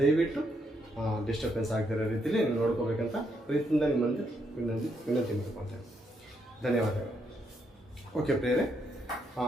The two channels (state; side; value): normal; both; correlation 0.77